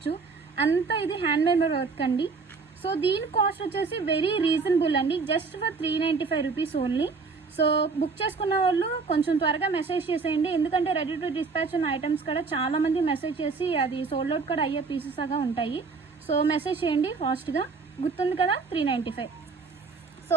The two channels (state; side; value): quieter; left; 4.6 dB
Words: అంతా ఇది హ్యాండ్ మేడ్ వర్క్ అండి. సో దీని కాస్ట్ వచ్చేసి వెరీ రీజనబుల్ అండి. Just for 395 rupees only. So book చేసుకున్న వాళ్ళు కొంచెం త్వరగా మెసేజ్ చేసేయండి. ఎందుకంటే రెడీ టు డిస్పాచ్ ఉన్న ఐటమ్స్ కూడా చాలా మంది మెసేజ్ చేసి అది సోల్డ్ అవుట్ కూడా అయ్యే పీసెస్ లాగా ఉంటాయి. సో మెసేజ్ చేయండి ఫాస్ట్గా. గుర్తుంది కదా 395. సో